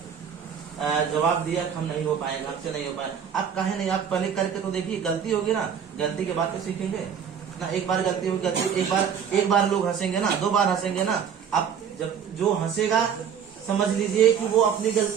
जवाब दिया कि हम नहीं हो पाएंगे, हमसे नहीं हो पाए, आप कहे नहीं, आप पहले करके तो देखिए, गलती होगी ना, गलती के बाद तो सीखेंगे ना। एक बार गलती होगी, गलती एक बार लोग हंसेंगे ना, 2 बार हंसेंगे ना। आप जब जो हंसेगा समझ लीजिए कि वो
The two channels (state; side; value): quieter; left; 7.8 dB